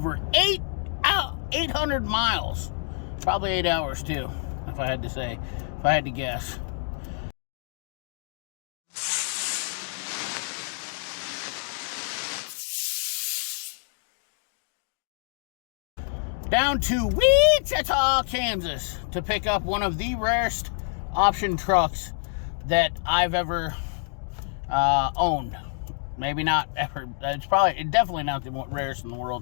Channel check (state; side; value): silent; right; 60 dB below the other